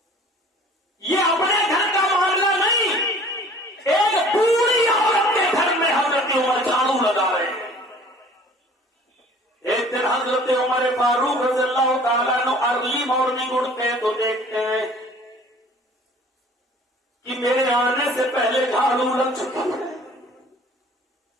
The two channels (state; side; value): normal; both; correlation 0.49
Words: یہ اپنے گھر کا معاملہ نہیں، ایک بوڑھی عورت کے گھر میں حضرت عمر جھاڑو لگا رہے ہیں۔ ایک دن حضرت عمر فاروق رضی اللہ تعالیٰ عنہ ارلی مارننگ اٹھتے ہیں تو دیکھتے ہیں کہ میرے آنے سے پہلے جھاڑو لگ چکی ہے۔